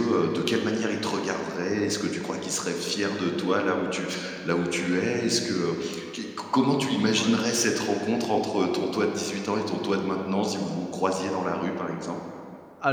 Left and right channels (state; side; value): identical; both; correlation 1.00